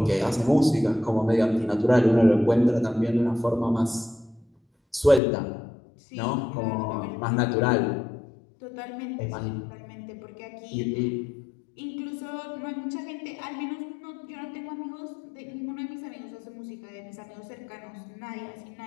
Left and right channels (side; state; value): right; drops out; at 5.2 s